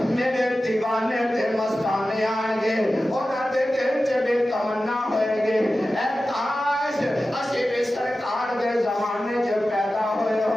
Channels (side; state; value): both; normal; correlation 0.94